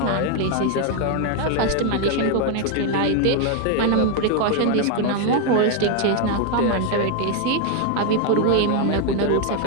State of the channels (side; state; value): both; different; correlation 0.01